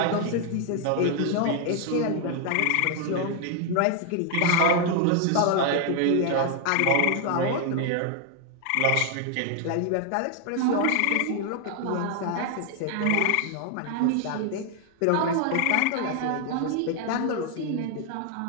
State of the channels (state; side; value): different; both; correlation 0.00